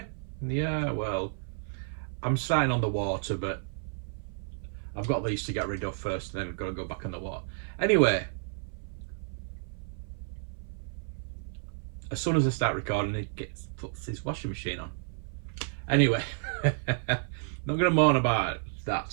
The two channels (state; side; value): silent; left; 55 dB below the other